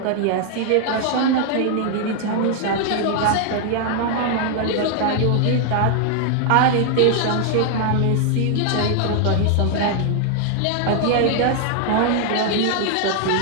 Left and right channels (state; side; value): different; both; correlation 0.00